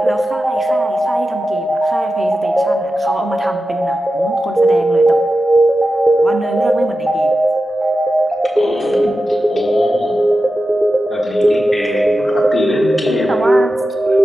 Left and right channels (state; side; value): normal; both; correlation 0.92